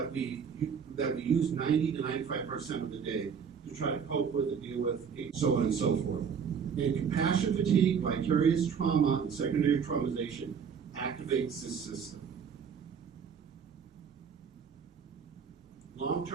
we use 90 to 95% of the day to try to cope with and deal with, so on and so forth. And compassion fatigue, vicarious trauma, and secondary traumatization activates this system.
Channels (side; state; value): left; quieter; 6.8 dB